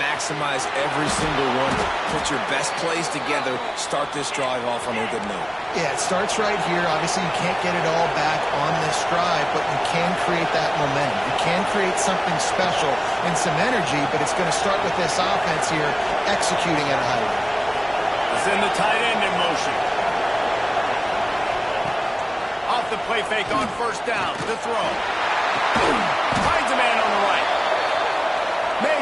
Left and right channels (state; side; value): identical; both; correlation 1.00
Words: every single one. Put your best plays together. Start this drive off on a good note. Yeah, it starts right here. Obviously, you can't get it all back on this drive, but you can create that momentum. You can create something special and some energy, but it's going to start with this offense here executing at a high rate. Send the tight end in motion. Off the play fake on first down. The throw. Finds a man on the right.